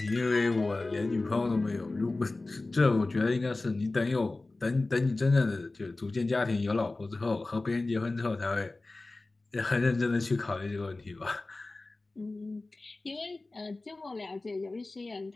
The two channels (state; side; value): quieter; right; 3.2 dB